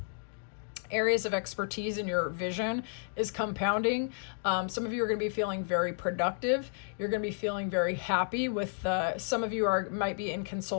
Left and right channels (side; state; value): right; silent; digital silence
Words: areas of expertise in your vision is compounding. Some of you are going to be feeling very productive. You're going to be feeling very happy with, some of you might be in